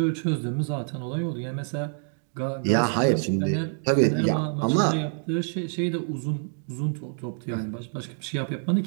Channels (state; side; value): silent; left; 60 dB below the other